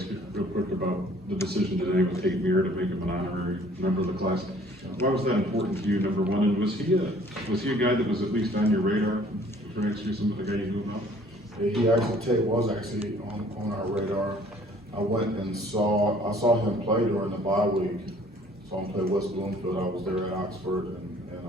you real quick about the decision today with Kate Muir to make him an honorary member of the class. Why was that important to you, number one? And was he a guy that was at least on your radar for next year, some of the guy you moved up? Tate was actually on our radar. I went and saw him play during the bye week. Saw him play West Bloomfield. I was there at Oxford and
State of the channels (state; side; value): normal; both; correlation 0.56